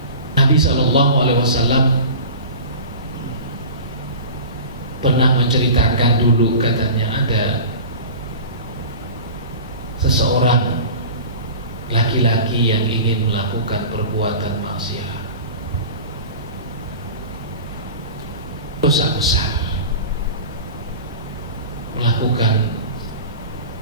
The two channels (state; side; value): inverted; both; correlation -0.36